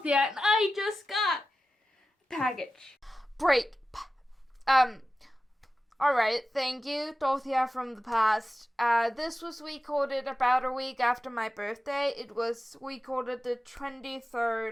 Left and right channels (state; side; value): normal; both; correlation 0.94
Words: Dorothea, and I just got a package. Break. Alright, thank you, Dorothea from the past. This was recorded about a week after my birthday. It was recorded the